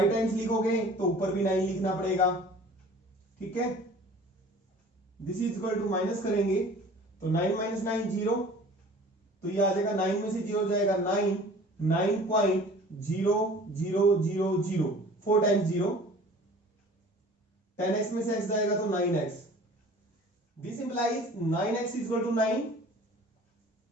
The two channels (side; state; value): both; normal; correlation 0.46